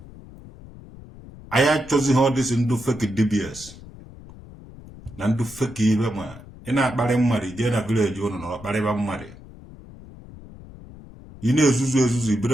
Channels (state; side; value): noise; left; rumble, 18 dB below the sound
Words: Anyị achọzighị ọ dịsị ndụ fake dibias na ndụ fake ibe. Ma ị na-akparị mmadụ jee na vileji ụnụ na ọkparịba mmadụ, ị na-ezuzu